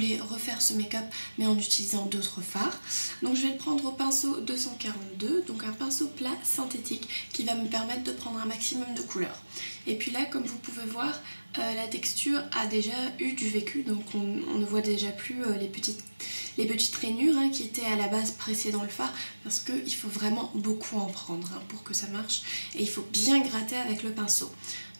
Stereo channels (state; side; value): inverted; both; correlation -1.00